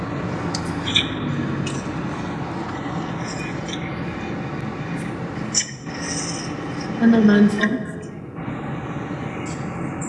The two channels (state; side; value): identical; both; correlation 1.00